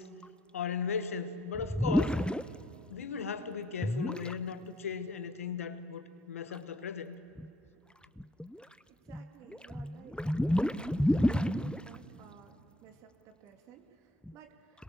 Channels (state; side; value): normal; both; correlation 0.67